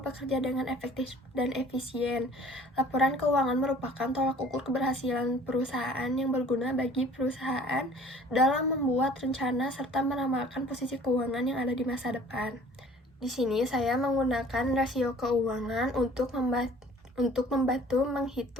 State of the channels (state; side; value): normal; both; correlation 0.51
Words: dengan efektif dan efisien. Laporan keuangan merupakan tolak ukur keberhasilan perusahaan yang berguna bagi perusahaan dalam membuat rencana serta meramalkan posisi keuangan yang ada di masa depan. Di sini saya menggunakan rasio keuangan untuk membantu